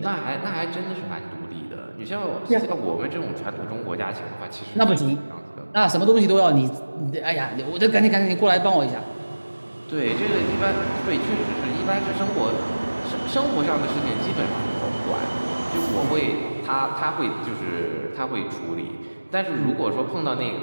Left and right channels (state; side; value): inverted; both; correlation -1.00